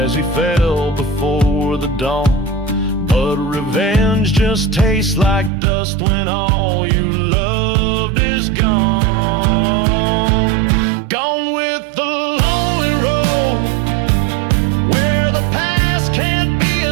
he fell before the dawn. But revenge just tastes like dust when all you loved is gone. Gone with the lonely road, where the past can't be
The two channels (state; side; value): drops out; left; at 5.5 s